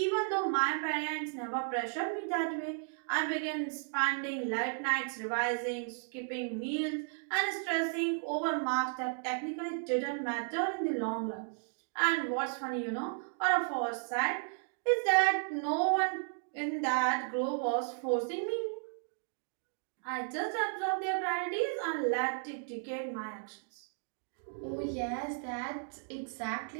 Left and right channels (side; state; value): left; silent; 55 dB below the other